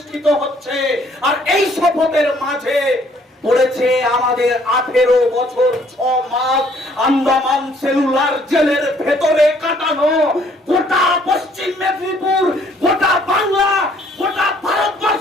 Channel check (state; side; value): normal; both; correlation 0.62